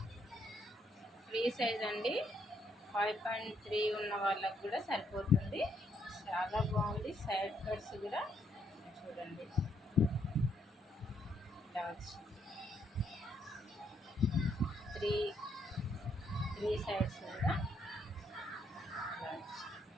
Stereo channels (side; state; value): both; normal; correlation 0.74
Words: ఫ్రీ సైజ్ అండి. 5.3 ఉన్న వాళ్ళకు కూడా సరిపోతుంది. చాలా బాగుంది. సైడ్ కట్స్ కూడా చూడండి, డాట్స్, త్రీ సైడ్స్ కూడా డాట్స్.